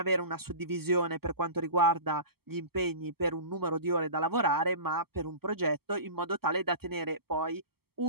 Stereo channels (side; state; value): left; late; 0.96 ms